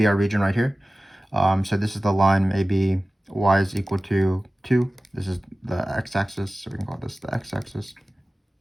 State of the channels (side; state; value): both; normal; correlation 0.97